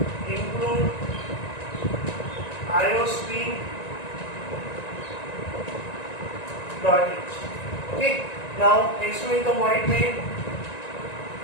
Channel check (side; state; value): right; late; 1.9 ms